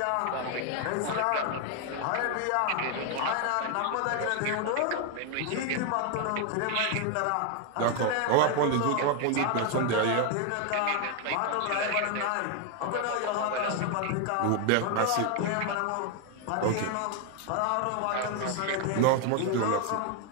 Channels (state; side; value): different; both; correlation 0.01